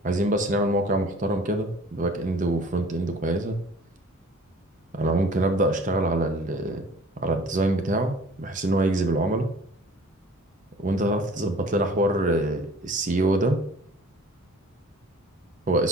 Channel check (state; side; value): normal; both; correlation 0.48